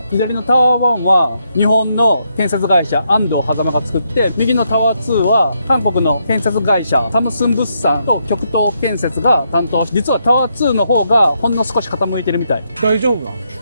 左のタワー1は日本の建設会社安藤狭間が作って、右のタワー2は韓国の建設会社サムスン物産と極東建設が担当し、実はタワー2の方がほんの少し傾いてるみたい。大丈夫な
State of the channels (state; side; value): inverted; both; correlation -0.78